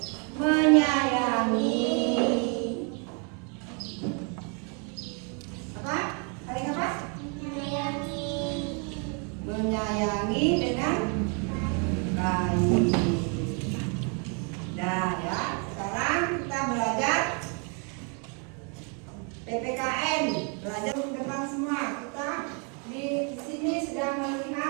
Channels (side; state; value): left; quieter; 37.6 dB